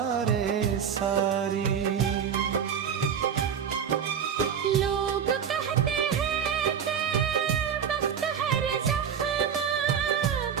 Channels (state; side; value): quieter; left; 7.8 dB